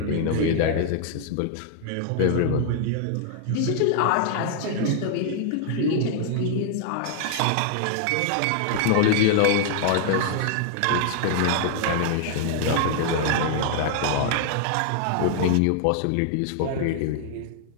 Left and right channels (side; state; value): both; different; correlation 0.00